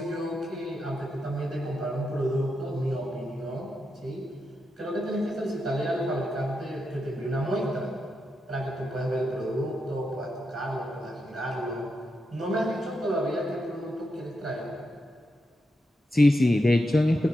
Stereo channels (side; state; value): both; normal; correlation 0.86